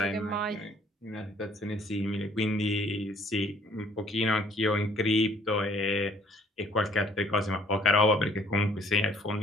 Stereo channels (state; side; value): normal; both; correlation 0.60